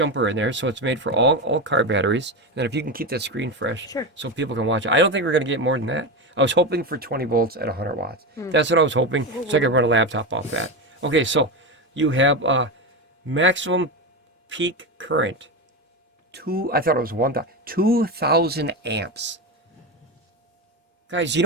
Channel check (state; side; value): normal; both; correlation 0.16